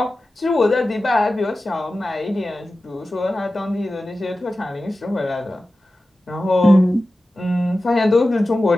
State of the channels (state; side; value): normal; both; correlation 0.94